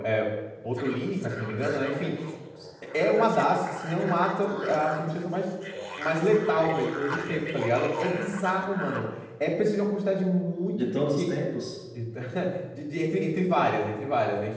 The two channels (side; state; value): both; identical; correlation 1.00